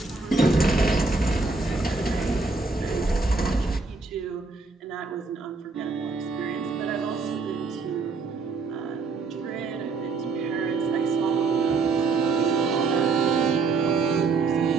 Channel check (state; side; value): quieter; left; 4.1 dB